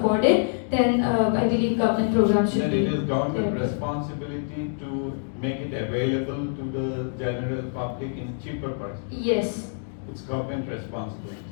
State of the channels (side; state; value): right; silent; digital silence